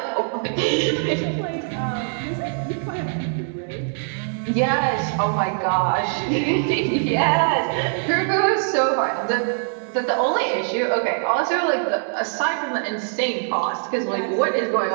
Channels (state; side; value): silent; left; digital silence